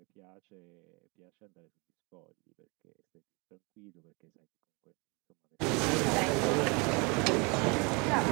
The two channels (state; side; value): quieter; left; 30.2 dB